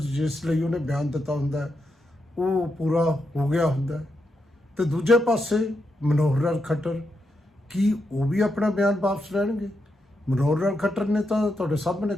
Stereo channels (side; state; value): both; normal; correlation 0.84